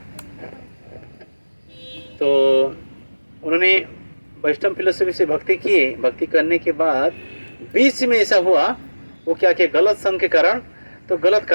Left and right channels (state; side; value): inverted; both; correlation -1.00